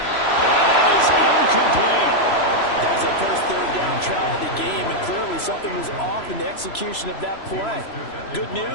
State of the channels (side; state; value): right; late; 3.0 ms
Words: And that is incomplete. That was their first 3rd down try of the game, and clearly something was off in the execution of that play. Good